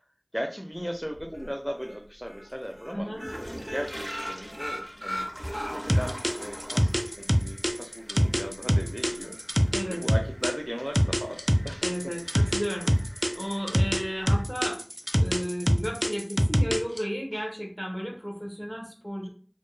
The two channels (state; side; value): identical; both; correlation 1.00